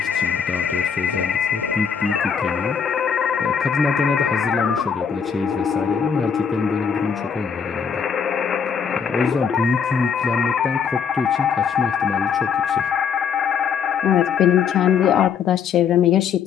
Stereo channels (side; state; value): right; quieter; 6.8 dB